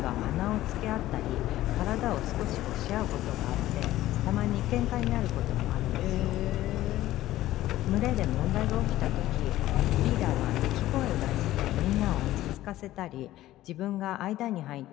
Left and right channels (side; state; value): right; quieter; 15.0 dB